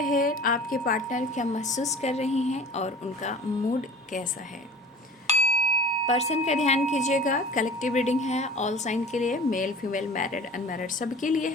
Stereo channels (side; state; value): both; normal; correlation 0.41